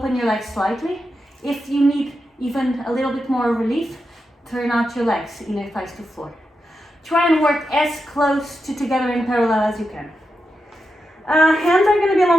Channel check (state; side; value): normal; both; correlation 0.87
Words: your legs slightly. If you need even a little bit more relief, turn out your legs, inner thighs to floor. Try and work as close to together in parallel as you can. Hands are going to be